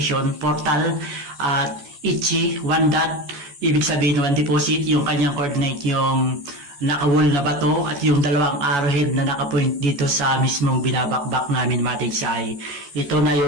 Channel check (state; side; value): late; left; 14 ms